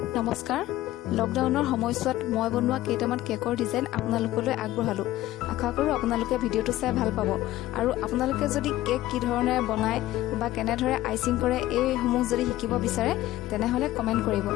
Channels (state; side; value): quieter; right; 15.5 dB